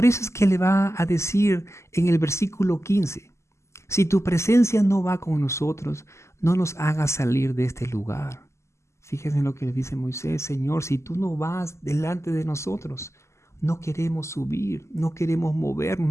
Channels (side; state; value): right; late; 0.13 ms